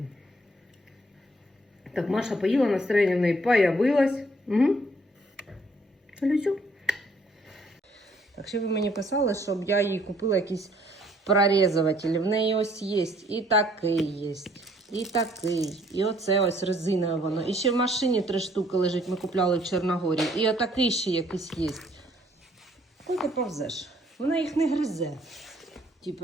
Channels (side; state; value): both; normal; correlation 0.63